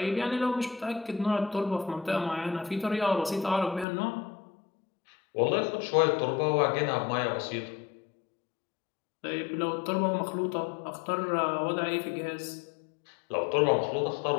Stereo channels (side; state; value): right; drops out; at 3.9 s